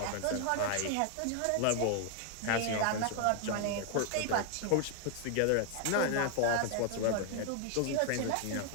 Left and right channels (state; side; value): different; both; correlation 0.00